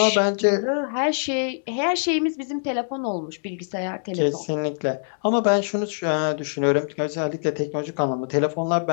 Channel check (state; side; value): silent; right; 63 dB below the other